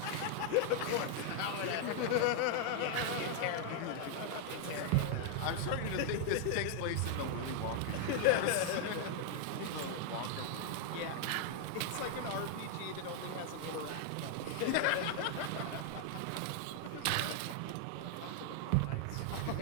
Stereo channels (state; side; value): different; both; correlation 0.00